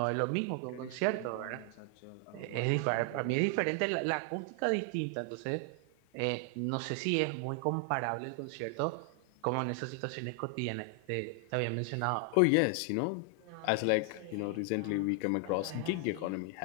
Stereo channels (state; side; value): different; both; correlation 0.00